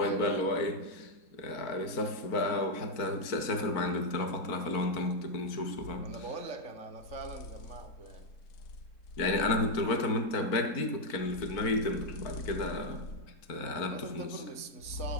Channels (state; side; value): late; right; 4.5 ms